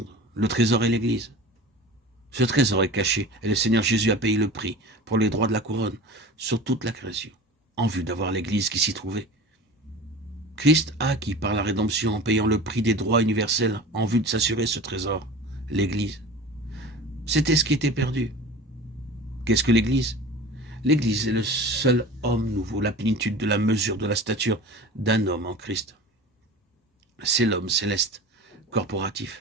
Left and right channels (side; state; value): both; normal; correlation 0.36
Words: le trésor est l'Église. Ce trésor est caché, et le Seigneur Jésus a payé le prix pour les droits de la couronne sur toute la création, en vue d'avoir l'Église qui s'y trouvait. Christ a acquis par la rédemption en payant le prix des droits universels en vue de s'assurer ce trésor, l'Église. C'était ce qui était perdu. Qu'est-ce que l'Église? L'Église est le seul homme nouveau, la plénitude de la mesure de la stature d'un homme en Christ. C'est l'homme céleste,